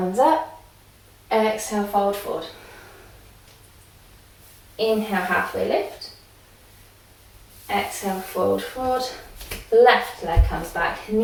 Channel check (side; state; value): both; identical; correlation 1.00